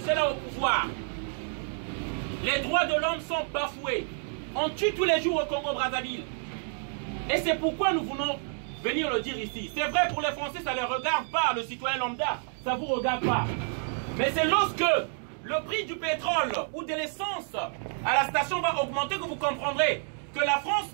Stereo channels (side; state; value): left; silent; 59 dB below the other